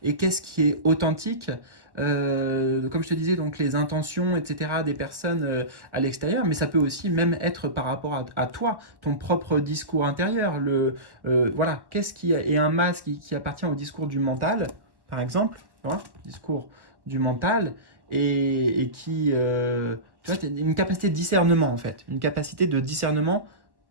et qu'est-ce qui est authentique. Comme je te disais, donc les intentions, etc., des personnes à l'extérieur, mais ça peut aussi même être par rapport à toi, ton propre discours intérieur. Voilà, qu'est-ce qui est un masque qui appartient au discours du mental, par exemple, hein, discours du mental, et qui, tu vois, une capacité de discernement en fait, une capacité de discernement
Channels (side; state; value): left; late; 1.1 ms